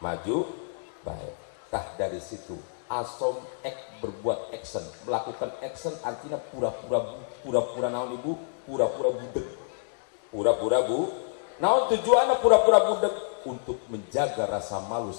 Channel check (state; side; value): silent; right; digital silence